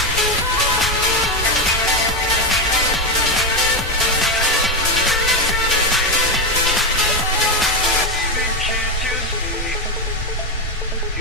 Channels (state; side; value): normal; both; correlation 0.10